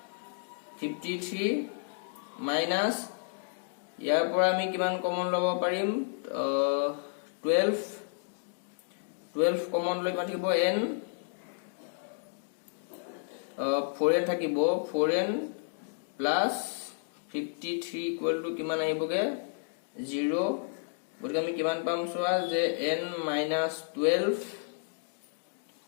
53 minus ইয়াৰ পৰা আমি কিমান কমন ল'ব পাৰিম 12 কমন লৈ কিমান থাকিব n 4n থাকিব 4n plus 53 equal to কিমান আহিবগে 0 গতিকে আমি কিমান পাম চোৱা যে n minus 12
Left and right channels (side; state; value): right; silent; digital silence